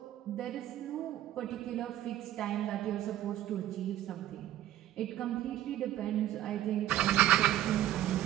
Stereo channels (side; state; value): left; quieter; 12.9 dB